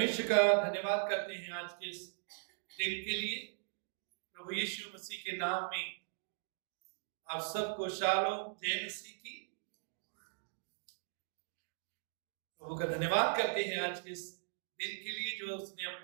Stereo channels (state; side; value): silent; left; digital silence